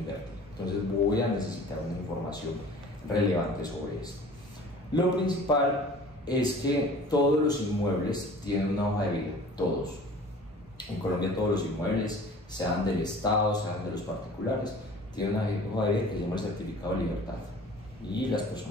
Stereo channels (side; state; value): both; normal; correlation 0.45